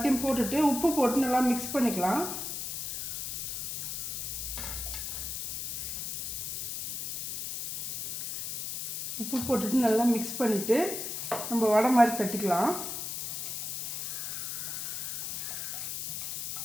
போட்டுட்டு உப்பு போட்டு நல்லா மிக்ஸ் பண்ணிக்கலாம். உப்பு போட்டுட்டு நல்லா மிக்ஸ் பண்ணிவிட்டு நம்ம வடை மாதிரி தட்டிக்கலாம்.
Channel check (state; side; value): noise; left; hiss, 4 dB below the sound